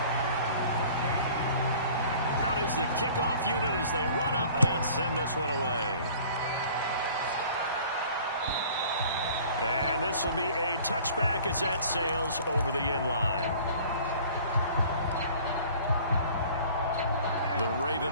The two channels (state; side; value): inverted; both; correlation -0.48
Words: is the kickoff unit as they run up and send this one away. And this will be a touchback as that sails over the end line. The Raven